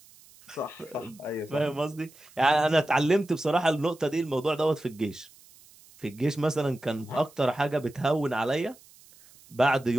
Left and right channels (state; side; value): noise; right; hiss, 25 dB below the sound